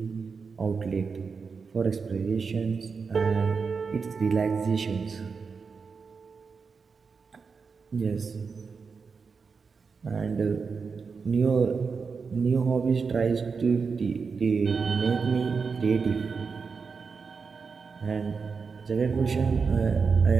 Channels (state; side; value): quieter; left; 5.2 dB